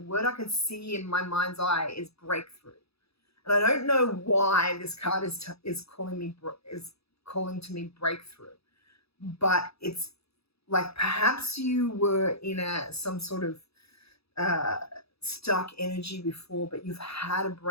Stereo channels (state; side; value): late; right; 0.78 ms